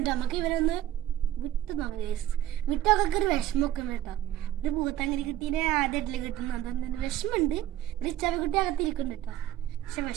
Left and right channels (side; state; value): left; quieter; 12.7 dB